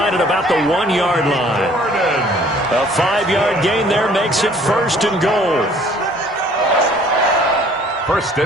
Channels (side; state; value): both; normal; correlation 0.56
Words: at about the 1-yard line. A 5-yard gain there makes it 1st and goal. 1st